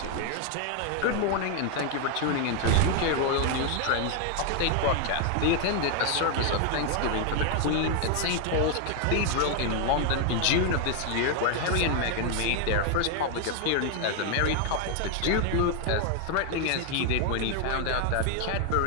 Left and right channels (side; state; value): both; different; correlation 0.01